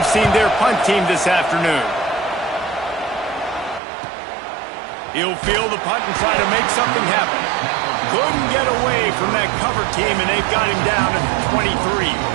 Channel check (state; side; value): drops out; left; at 3.8 s